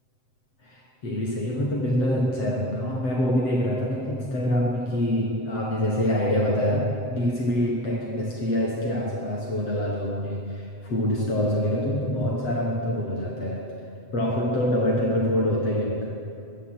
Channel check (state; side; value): late; right; 7.8 ms